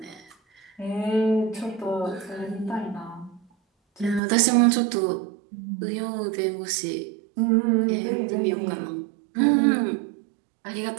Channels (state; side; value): drops out; left; at 4.2 s